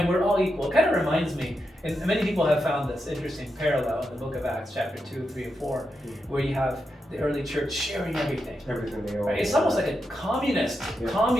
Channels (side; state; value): both; normal; correlation 0.86